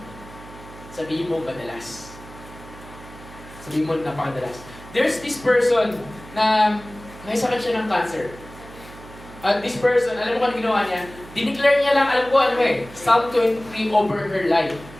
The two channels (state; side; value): noise; right; hum, 18 dB below the sound